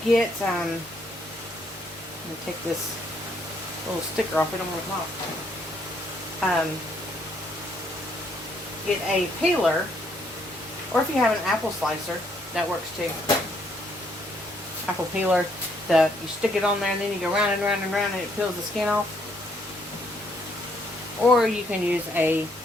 get, let me take this little sticker off. We don't want to come off. Get a peeler, or if you have an apple slicer, that works too. Apple peeler, you stick it on there and then you go round and round and round and it peels the skin off. Or you can use a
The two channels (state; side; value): normal; both; correlation 0.70